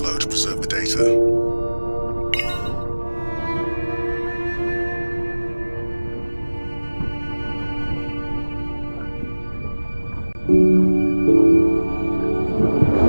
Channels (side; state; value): both; inverted; correlation -1.00